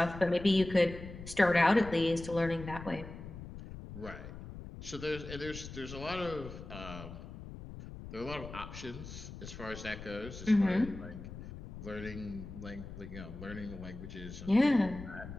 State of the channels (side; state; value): left; noise; rumble, 12 dB below the sound